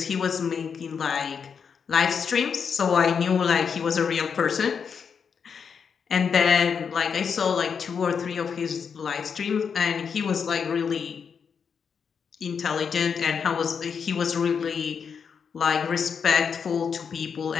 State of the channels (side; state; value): right; quieter; 6.5 dB